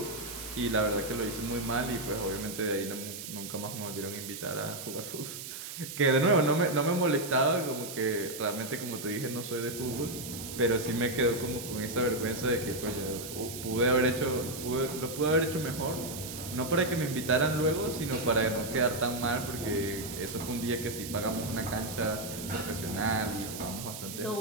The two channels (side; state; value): right; noise; hiss, 9 dB below the sound